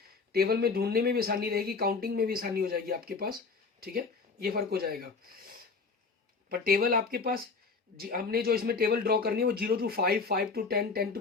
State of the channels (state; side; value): quieter; right; 4.6 dB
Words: टेबल में ढूंढने में भी आसानी रहेगी, काउंटिंग में भी आसानी हो जाएगी आपके पास। ठीक है, ये फर्क हो जाएगा। पर टेबल आपके पास हमने जो इसमें टेबल ड्रॉ करनी है वो 0 to 5, 5 to 10, 10 to